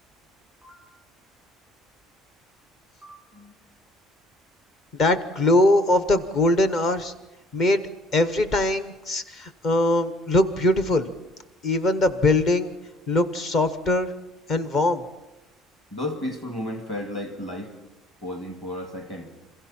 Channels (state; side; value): normal; both; correlation 0.58